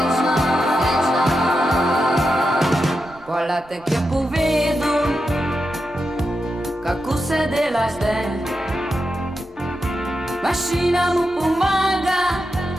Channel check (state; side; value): normal; both; correlation 0.88